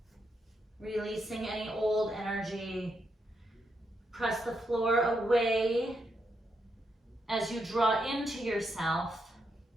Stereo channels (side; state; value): both; normal; correlation 0.81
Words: releasing any old energy. Press the floor away as you draw into yourself.